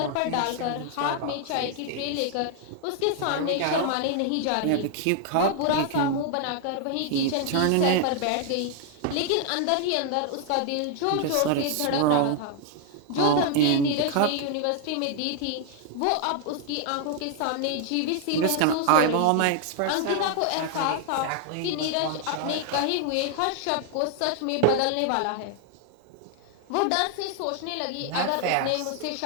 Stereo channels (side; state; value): both; different; correlation 0.00